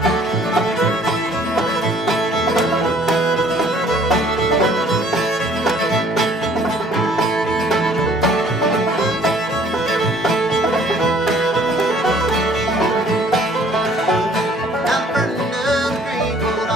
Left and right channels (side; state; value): both; normal; correlation 0.57